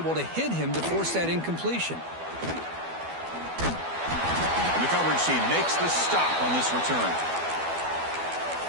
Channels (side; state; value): left; late; 12 ms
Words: to hit him to force that incompletion. And the coverage team makes the stop on this return.